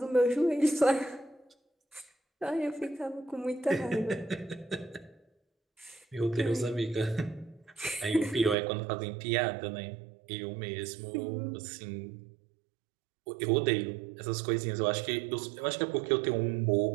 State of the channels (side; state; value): left; drops out; at 8.6 s